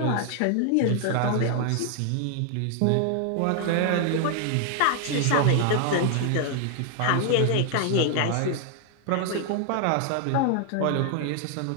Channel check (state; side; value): different; both; correlation 0.00